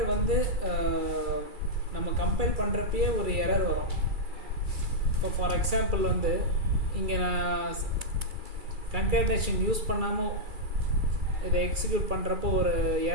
வந்து நம்ம கம்பைல் பண்ணுறப்பயே ஒரு எரர் வரும். இப்போ ஃபார் எக்ஸாம்பிள் வந்து இங்கே நான் கன்கேட்டனேஷன் யூஸ் பண்ணாமல் இதை எக்ஸிக்யூட் பண்ணுறப்போ ஒரு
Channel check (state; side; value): late; left; 2.3 ms